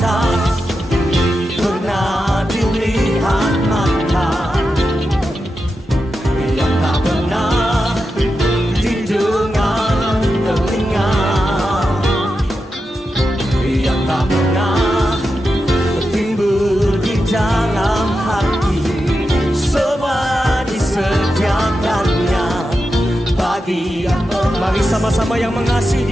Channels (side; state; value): both; normal; correlation 0.89